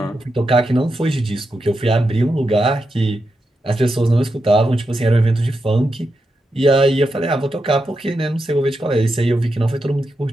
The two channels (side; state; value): both; normal; correlation 0.86